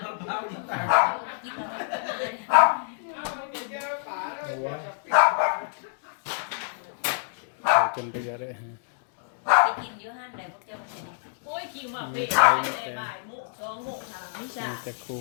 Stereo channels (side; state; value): right; silent; digital silence